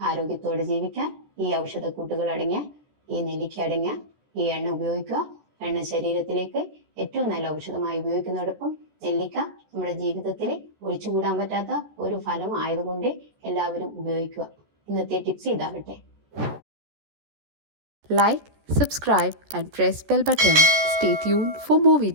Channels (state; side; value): late; left; 14 ms